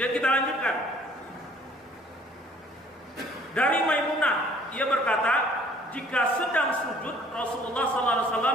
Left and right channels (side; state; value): both; normal; correlation 0.57